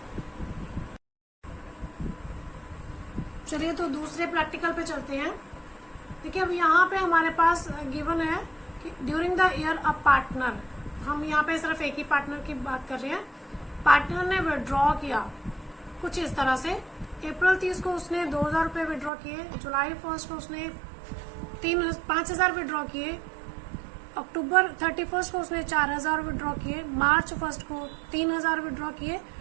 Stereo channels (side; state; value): left; drops out; at 19.1 s